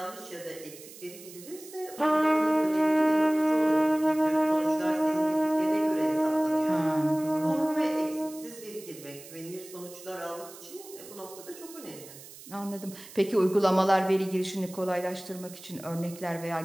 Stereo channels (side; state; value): right; noise; hiss, 17 dB below the sound